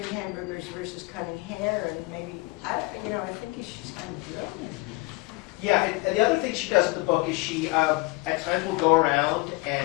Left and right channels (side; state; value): right; quieter; 23.9 dB